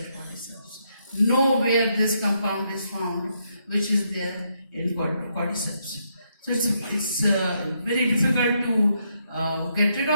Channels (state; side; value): inverted; both; correlation -0.77